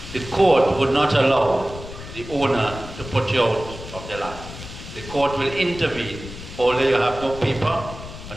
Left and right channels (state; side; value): noise; left; rumble, 13 dB below the sound